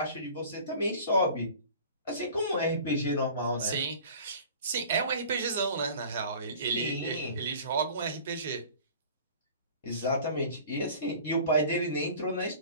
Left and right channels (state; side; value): inverted; both; correlation -0.44